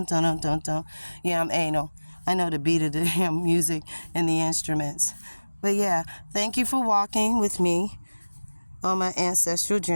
dum, dum, dum. Yeah, I'm anal. I know the beat of the damn music and the instruments. But yeah, thank you for walking with me on my ancestral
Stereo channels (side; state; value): both; inverted; correlation -1.00